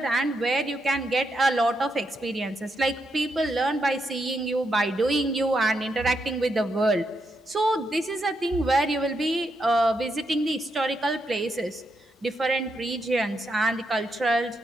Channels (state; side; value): normal; both; correlation 0.82